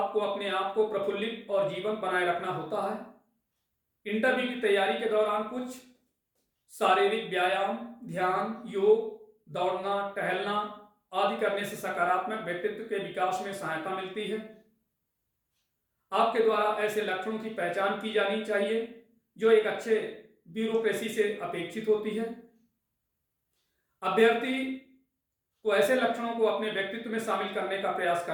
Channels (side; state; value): both; identical; correlation 1.00